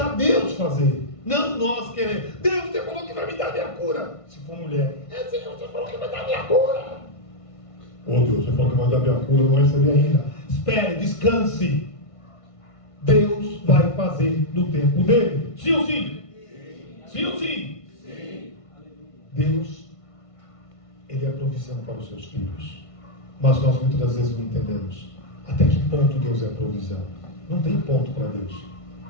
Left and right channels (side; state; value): right; late; 1.5 ms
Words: Deus fazer. Não nós queremos. Deus, você falou que vai me dar minha cura. Se for mulher, Senhor, você falou que vai dar minha cura. Deus, você falou que vai dar minha cura, eu não recebi ainda. Espere, descanse. Deus vai fazer no tempo dele. Sim ou sim? Sim ou sim? Sim. Deus, Ele é a provisão para os seus filhos. Mas nós muitas vezes não entendemos até que ponto Deus é a provisão. Não tem ponto para Deus.